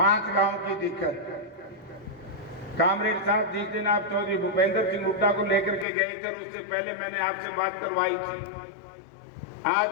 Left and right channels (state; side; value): drops out; right; at 5.9 s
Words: गांव की दिक्कत। कामरेड साहब जिस दिन आप चौधरी भूपेंद्र सिंह हुड्डा को लेकर के गए थे उससे पहले मैंने आपसे बात करवाई थी। आज